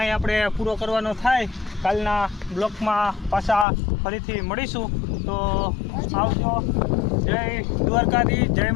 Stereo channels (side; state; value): right; drops out; at 3.7 s